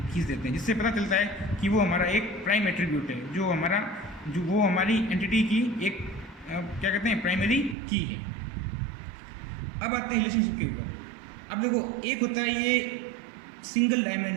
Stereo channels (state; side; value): drops out; left; at 7.8 s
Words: देते हैं, जिससे पता चलता है कि वो हमारा एक प्राइम एट्रीब्यूट है, जो वो हमारी एंटिटी की एक क्या कहते हैं? प्राइमरी की है। अब आते हैं रिलेशनशिप के ऊपर। अब देखो, एक होता है ये सिंगल